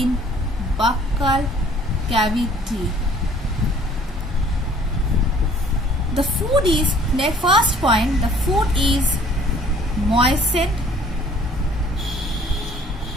buccal cavity. The food is, the first point, the food is moistened.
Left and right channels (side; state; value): both; normal; correlation 0.55